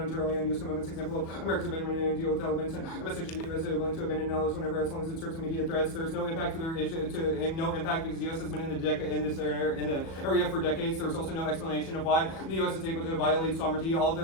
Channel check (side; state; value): right; late; 37 ms